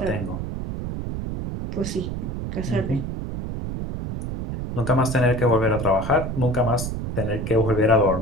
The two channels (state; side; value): noise; right; rumble, 5 dB below the sound